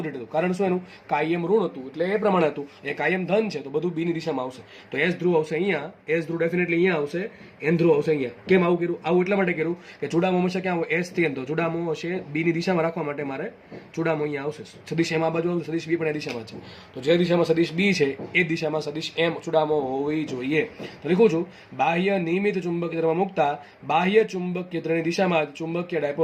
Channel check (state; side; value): identical; both; correlation 1.00